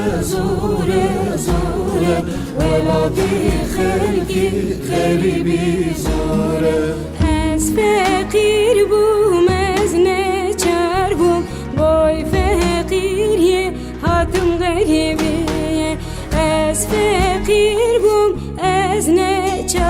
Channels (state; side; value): identical; both; correlation 1.00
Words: زورة زورة ولادي خلقي غريبي زورة از فقیر بوم از نچار بوم بای فقیریه هاتم غریبیه از فقیر بوم از